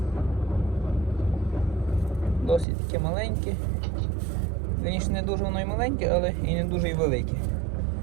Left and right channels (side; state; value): left; drops out; at 2.7 s